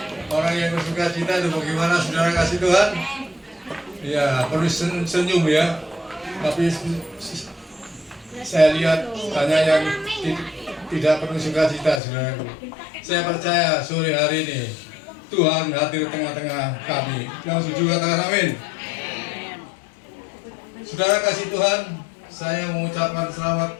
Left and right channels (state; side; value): drops out; right; at 12.0 s